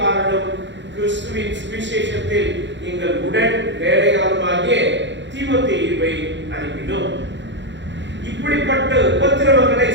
கிறிஸ்துவின் சுவிசேஷத்தில் எங்கள் உடன் வேலையாளுமாகிய தீமோத்தேயுவை அனுப்பினோம். இப்படிப்பட்ட உபத்திரவங்களை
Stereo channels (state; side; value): late; left; 0.53 ms